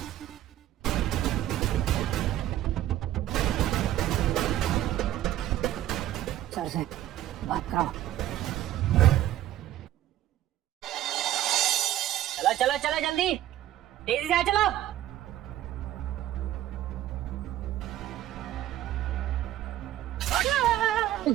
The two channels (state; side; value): quieter; left; 13.2 dB